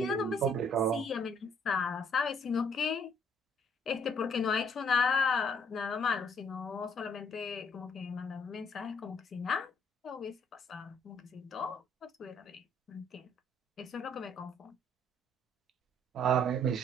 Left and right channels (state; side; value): normal; both; correlation 0.64